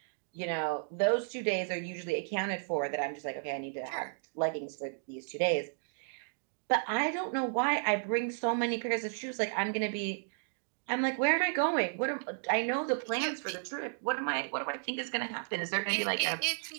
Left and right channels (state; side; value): silent; left; digital silence